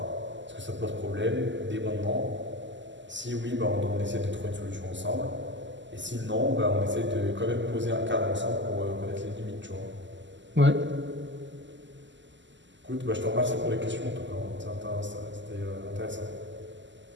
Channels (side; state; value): left; late; 0.54 ms